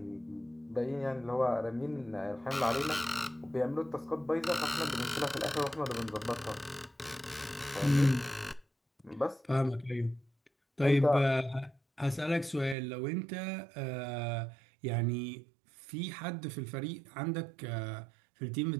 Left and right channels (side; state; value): left; drops out; at 12.8 s